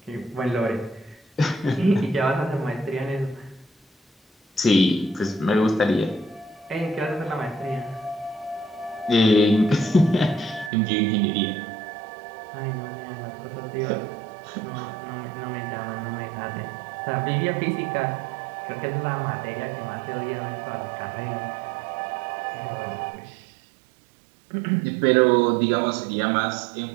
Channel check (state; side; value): drops out; left; at 10.7 s